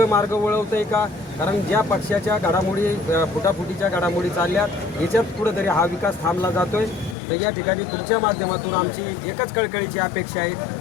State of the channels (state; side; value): drops out; right; at 7.2 s